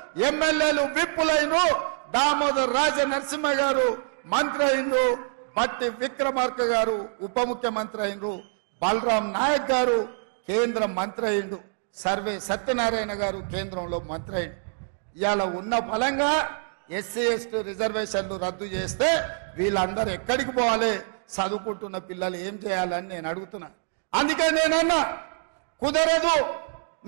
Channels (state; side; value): silent; left; digital silence